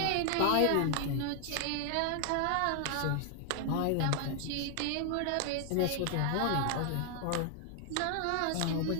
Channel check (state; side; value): different; both; correlation 0.00